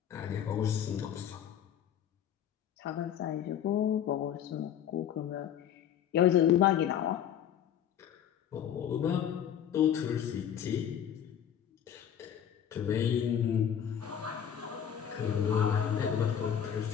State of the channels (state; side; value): quieter; right; 9.3 dB